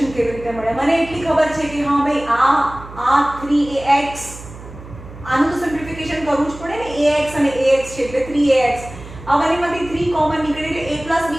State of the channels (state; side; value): noise; right; hum, 16 dB below the sound